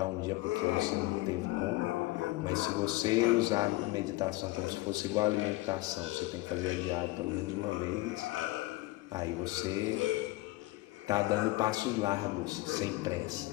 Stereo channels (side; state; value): right; quieter; 19.6 dB